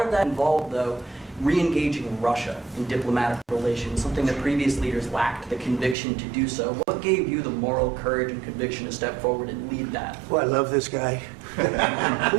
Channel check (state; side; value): drops out; left; at 6.0 s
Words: of that involved, though, re-engaging Russia in diplomatic relations, something that previous leaders lacked the conviction to do so. What gave you the moral courage and conviction to step forward and lead that? Well, I love this guy. Who